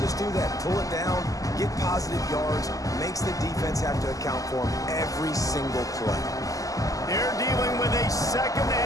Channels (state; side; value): late; right; 0.17 ms